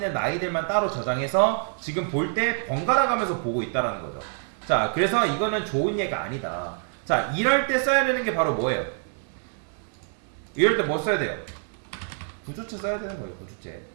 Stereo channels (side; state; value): left; silent; 60 dB below the other